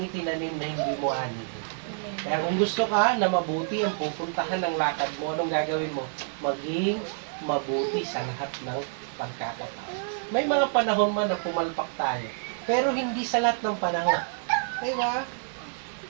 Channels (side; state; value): left; silent; digital silence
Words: na hindi mo ani. Kaya kung gusto ka na mabuti ang pupuntahan ng lakad mo, anong gagawin mo? Maging mabuti sa lahat ng pagkakataon. May mga panahon man na pumalpak tayo, pero hindi sa lahat ng panahon. Diba?